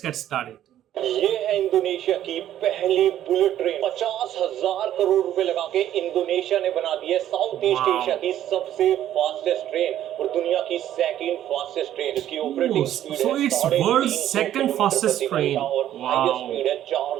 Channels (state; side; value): quieter; left; 11.8 dB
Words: get started. ये है Indonesia की पहली bullet train 50,000 crore रुपए लगा के Indonesia ने बना दी है साउथ ईस्ट एशिया की सबसे फास्टेस्ट ट्रेन और दुनिया की सेकंड फास्टेस्ट ट्रेन। इसकी operating speed so it's world's second fastest train और हाईएस्ट स्पीड है